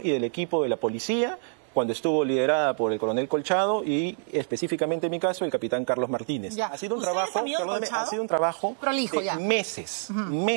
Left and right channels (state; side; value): silent; left; 59 dB below the other